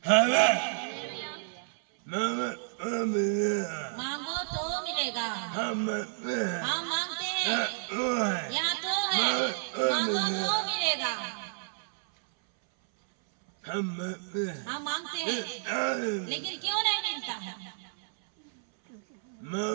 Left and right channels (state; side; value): silent; left; 58 dB below the other